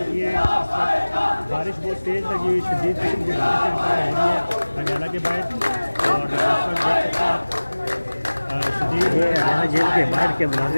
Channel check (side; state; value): both; inverted; correlation -1.00